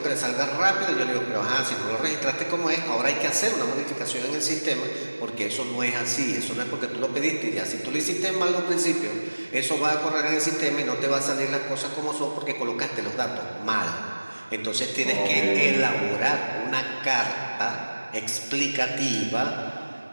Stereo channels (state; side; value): inverted; both; correlation -1.00